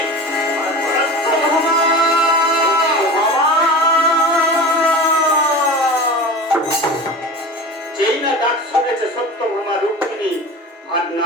যেই না ডাক শুনেছে সত্যভামা, রুক্মিণী আর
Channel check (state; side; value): normal; both; correlation 0.33